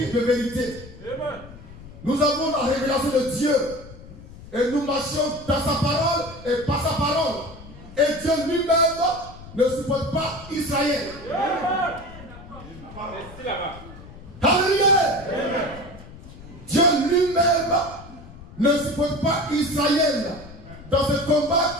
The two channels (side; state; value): left; noise; rumble, 17 dB below the sound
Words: de vérité. Nous avons la révélation de Dieu. Et nous marchons dans sa parole et par sa parole. Et Dieu lui-même ne supporte pas Israël. Alléluia. Dieu lui-même ne supporte pas Israël dans ce combat